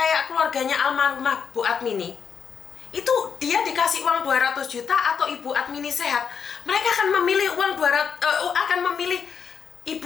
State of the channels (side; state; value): right; quieter; 6.6 dB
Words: keluarganya almarhumah Bu Admini. Itu dia dikasih uang 200 juta atau Ibu Admini sehat. mereka akan memilih akan memilih